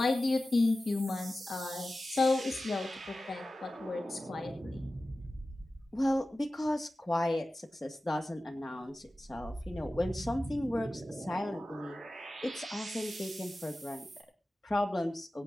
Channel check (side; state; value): both; normal; correlation 0.95